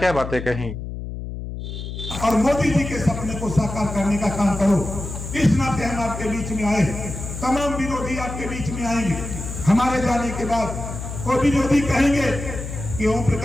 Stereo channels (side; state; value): left; noise; hum, 7 dB below the sound